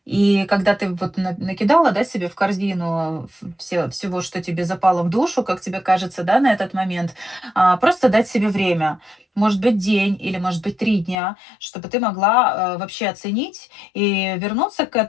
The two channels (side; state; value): right; drops out; at 11.2 s